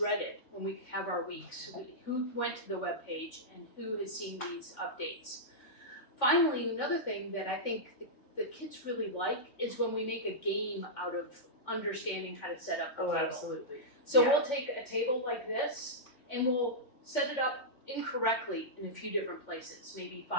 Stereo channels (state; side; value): late; right; 3.5 ms